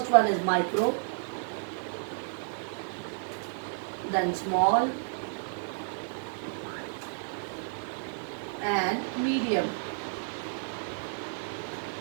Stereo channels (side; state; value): left; silent; 57 dB below the other